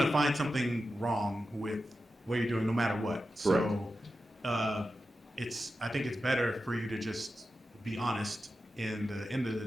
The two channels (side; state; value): both; normal; correlation 0.91